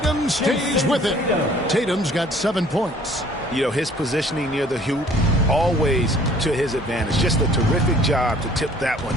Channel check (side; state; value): both; normal; correlation 0.55